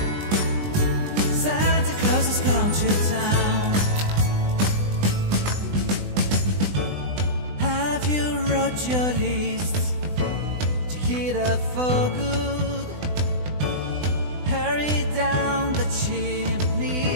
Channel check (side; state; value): left; late; 20 ms